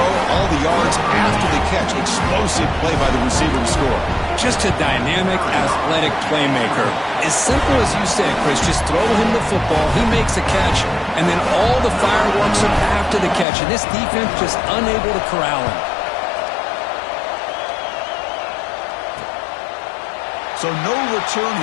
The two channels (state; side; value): drops out; right; at 13.5 s